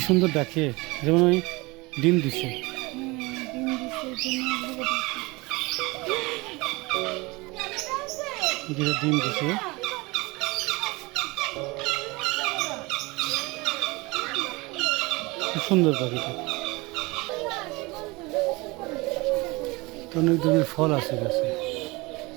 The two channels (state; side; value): quieter; left; 24.1 dB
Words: সুন্দর ডাকে, যেমন ওই ডিম দিছে। যেটা ডিম দিছে। খুব সুন্দর পাখিটা। অনেক ধরনের ফল আছে গাছে,